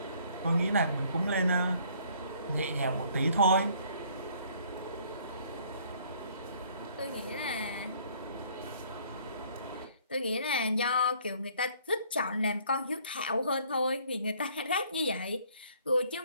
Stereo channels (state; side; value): inverted; both; correlation -0.60